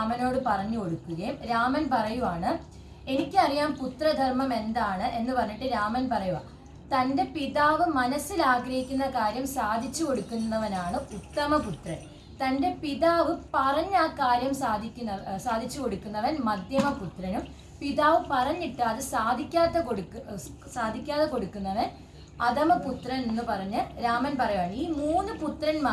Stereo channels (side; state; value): both; identical; correlation 1.00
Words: പറഞ്ഞു കൊടുക്കുകയും രാമൻ പറയുവാണ്, എനിക്കറിയാം പുത്രധർമ്മം എന്താണ് എന്ന് പറഞ്ഞിട്ട് രാമൻ പറയുക, തൻ്റെ പിതാവ് മനസ്സിൽ ആഗ്രഹിക്കുന്ന കാര്യം സാധിച്ചു കൊടുക്കുന്നവനാണ് ഉത്തമപുത്രൻ, തൻ്റെ പിതാവ് പറഞ്ഞ ആ കാര്യം സാധിച്ചു കൊടുക്കുന്നവൻ മധ്യമപുത്രനും, പിതാവ് പറഞ്ഞിട്ട് അത് സാധിക്കാതെ കൊടുക്കുന്നവൻ അധമപുത്രൻ എന്ന് പറഞ്ഞ് രാമൻ പറയുവാണ്. ഈ 3